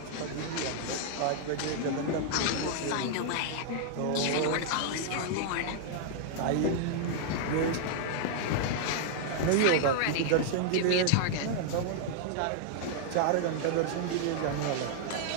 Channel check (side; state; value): both; different; correlation -0.01